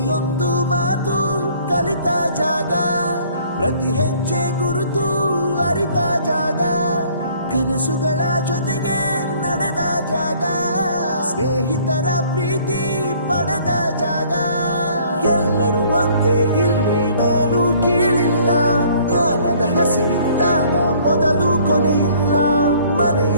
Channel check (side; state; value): both; inverted; correlation -0.57